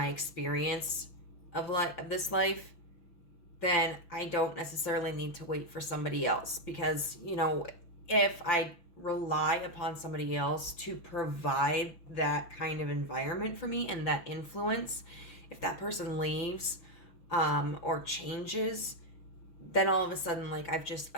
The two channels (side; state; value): right; late; 6.2 ms